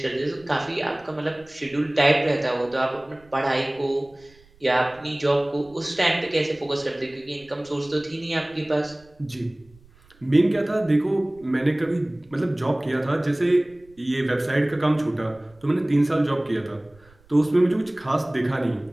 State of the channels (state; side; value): noise; right; rumble, 29 dB below the sound